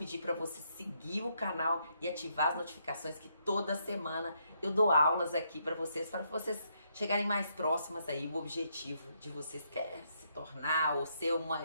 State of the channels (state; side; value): inverted; both; correlation -0.75